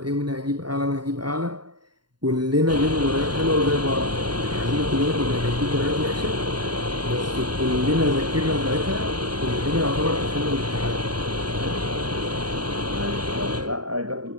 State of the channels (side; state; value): left; late; 0.71 ms